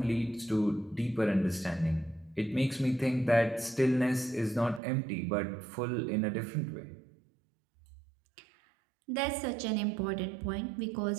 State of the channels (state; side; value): drops out; left; at 4.8 s